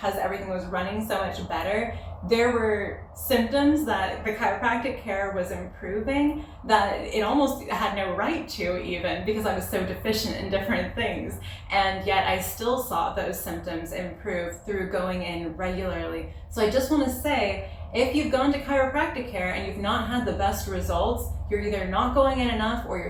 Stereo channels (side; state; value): both; identical; correlation 1.00